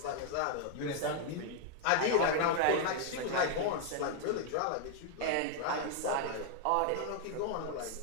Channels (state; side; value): different; both; correlation 0.00